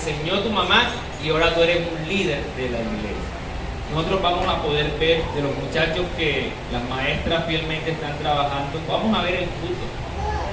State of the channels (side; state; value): both; identical; correlation 1.00